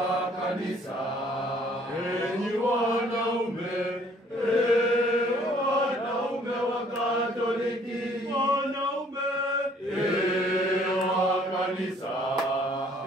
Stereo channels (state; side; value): normal; both; correlation 0.60